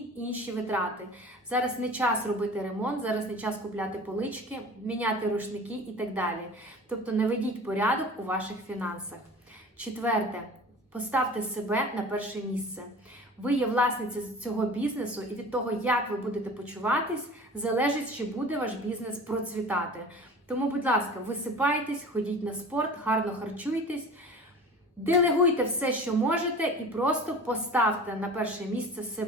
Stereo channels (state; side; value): normal; both; correlation 0.40